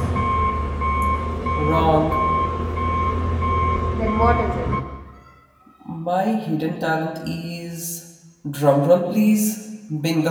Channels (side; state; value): both; identical; correlation 1.00